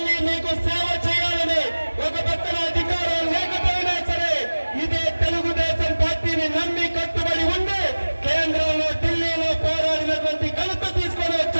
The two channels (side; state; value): both; inverted; correlation -1.00